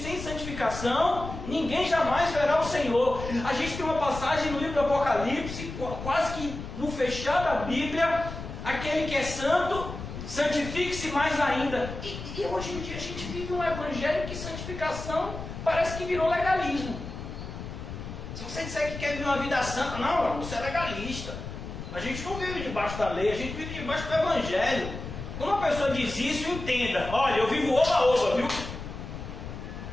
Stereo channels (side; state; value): left; noise; rumble, 9 dB below the sound